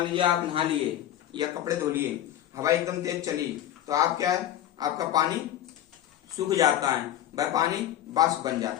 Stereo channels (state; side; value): quieter; right; 11.8 dB